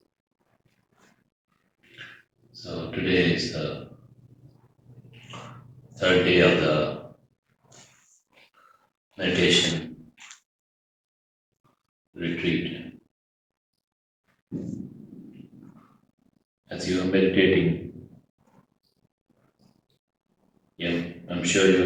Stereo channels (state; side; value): identical; both; correlation 1.00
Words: So today is the third day of the meditation retreat. As you are meditating, I'm sure you